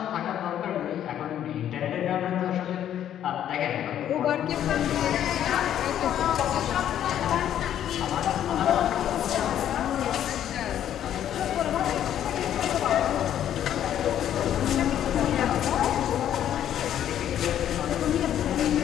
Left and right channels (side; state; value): right; quieter; 10.7 dB